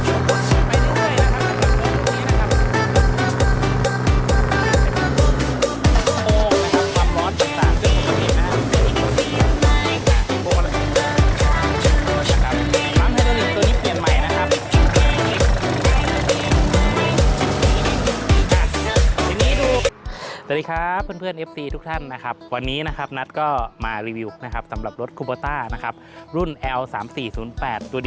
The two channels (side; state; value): both; identical; correlation 1.00